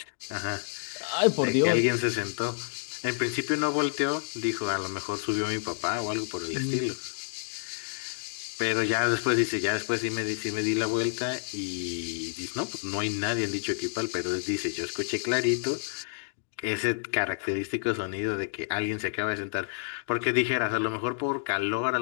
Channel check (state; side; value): silent; right; digital silence